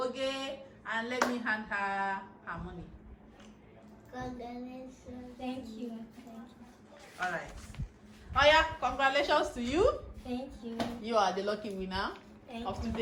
and let me hand her her money. Congratulations. Thank you. All right. Oh yeah, congratulations to you. Thank you. You are the lucky winner Thank of you.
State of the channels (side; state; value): both; identical; correlation 1.00